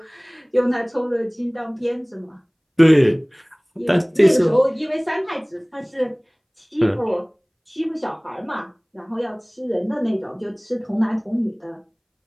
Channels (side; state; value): both; identical; correlation 1.00